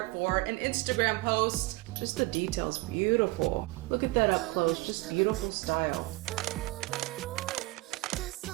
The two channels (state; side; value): quieter; left; 22.6 dB